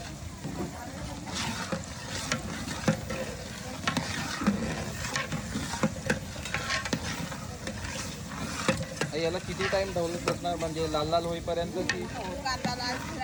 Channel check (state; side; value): identical; both; correlation 1.00